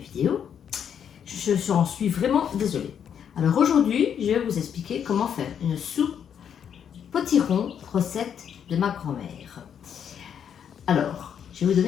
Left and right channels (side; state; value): right; quieter; 8.3 dB